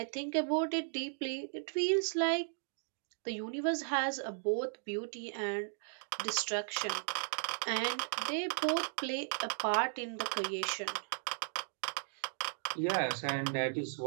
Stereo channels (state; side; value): silent; left; digital silence